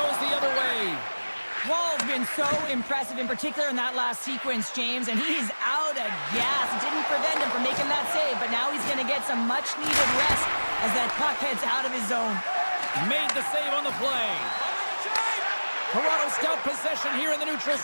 the other way. Wall's been so impressive, in particular in that last sequence, James, and he's out of gas. It didn't prevent him from making that save, but now he's going to get some much-needed rest as that puck heads out of his zone. Made the save on the play. Toronto's got possession here in the neutral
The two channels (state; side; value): inverted; both; correlation -1.00